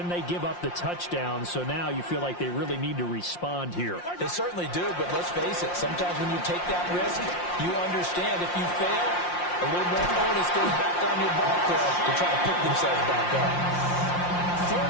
they give up the touchdown. So now you feel like they really need to respond here. They certainly do, but let's face it. Sometimes when you take that risk, you understand if you fail, a little more onus goes back on your ball club to try to pick themselves back up.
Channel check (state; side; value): late; right; 5.7 ms